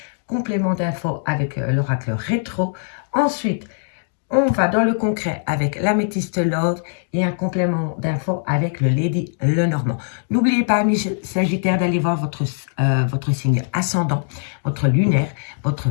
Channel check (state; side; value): silent; right; digital silence